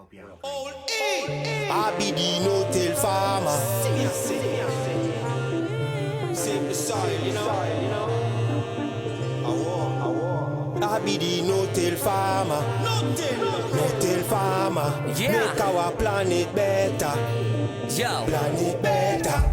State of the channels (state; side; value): identical; both; correlation 1.00